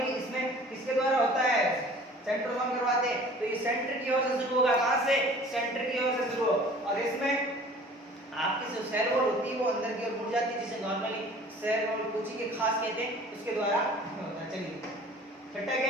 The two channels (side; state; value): both; normal; correlation 0.47